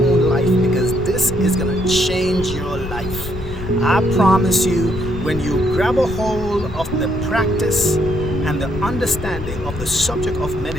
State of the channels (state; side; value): noise; left; rumble, 9 dB below the sound